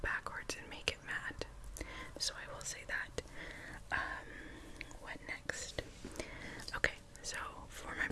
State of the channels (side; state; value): both; identical; correlation 1.00